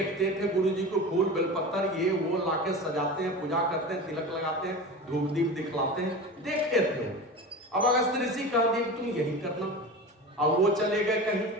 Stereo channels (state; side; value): normal; both; correlation 0.30